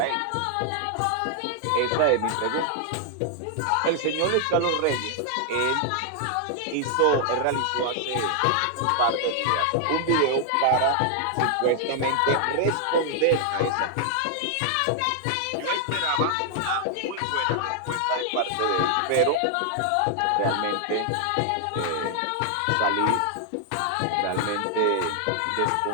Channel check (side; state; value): both; different; correlation 0.00